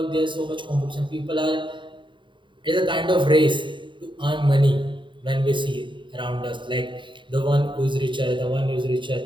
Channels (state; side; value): late; left; 0.23 ms